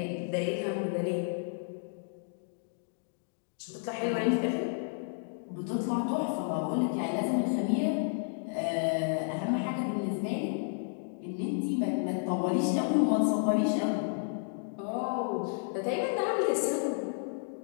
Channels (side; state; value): right; silent; digital silence